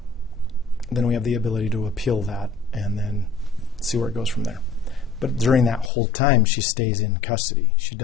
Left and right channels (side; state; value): right; drops out; at 5.9 s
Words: then we have the ability to appeal that and then see where it goes from there. But during that whole time, she stays in custody. She